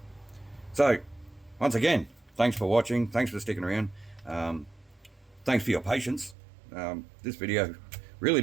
So once again, thanks for watching, thanks for sticking around. thanks for your patience. This video really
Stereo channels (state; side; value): drops out; left; at 6.4 s